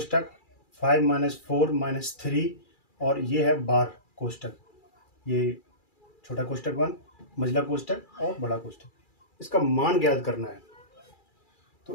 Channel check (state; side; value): late; right; 2.4 ms